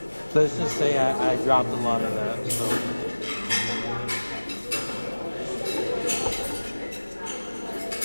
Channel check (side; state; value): both; inverted; correlation -1.00